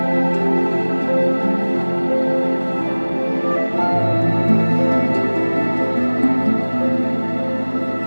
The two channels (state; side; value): inverted; both; correlation -1.00